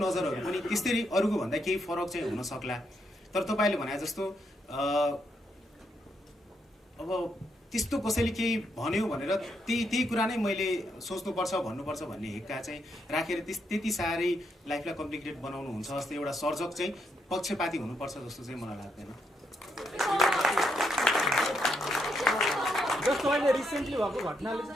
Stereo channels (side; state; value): both; normal; correlation 0.78